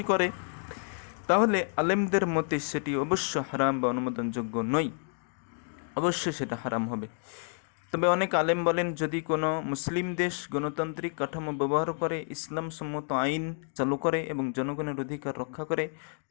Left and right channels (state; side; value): silent; right; 58 dB below the other